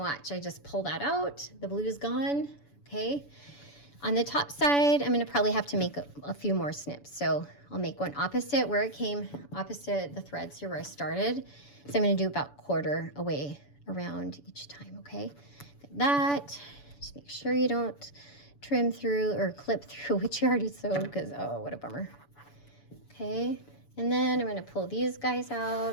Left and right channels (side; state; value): right; late; 7.0 ms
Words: I just pull that out, the blue's gone, okay? On the top side, I'm gonna probably have to make a few more snips. So I'll make one opposite where it came, opposite the threads here where I started. So I'm gonna do about 1/4 away around each time, okay? Like that, just make sure you don't trim through or clip through what you already sewed because, oh, what a bummer. Okay, and then I'm gonna pull these guys